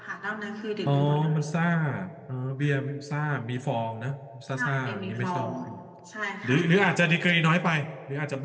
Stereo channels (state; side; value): identical; both; correlation 1.00